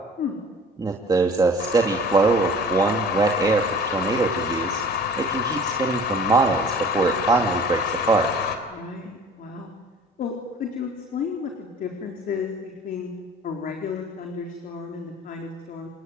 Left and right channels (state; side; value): normal; both; correlation 0.47